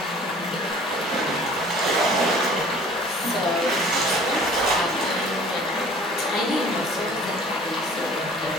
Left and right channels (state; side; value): normal; both; correlation 0.49